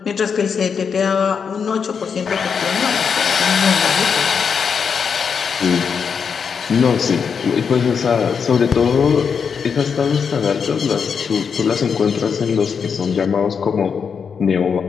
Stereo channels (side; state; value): right; quieter; 6.4 dB